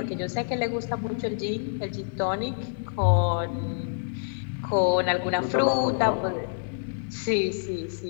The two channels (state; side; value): silent; right; 60 dB below the other